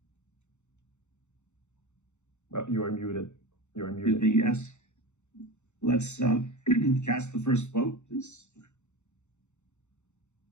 You are muted. You are muted. Yes. Let's cast the first vote, please.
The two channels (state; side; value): late; right; 0.83 ms